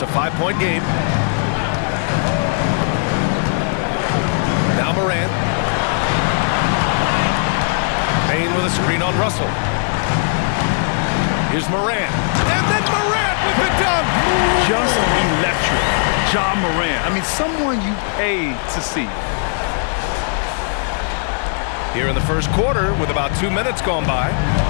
a 5-point game. Now Morant. Payne with a screen on Russell. Here's Morant. And then Morant with the dunk. Just electric. Ja Morant. I mean, someone you pay to see. Here in the first quarter with about 2 minutes gone by.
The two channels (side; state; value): right; silent; digital silence